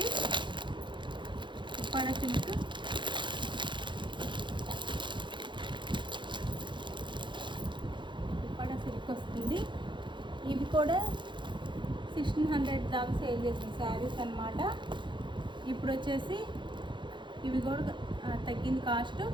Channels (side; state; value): left; late; 0.23 ms